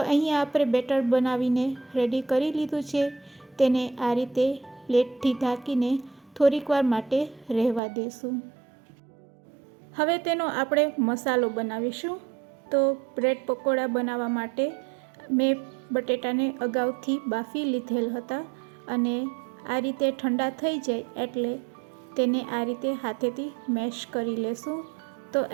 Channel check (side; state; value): left; drops out; at 7.8 s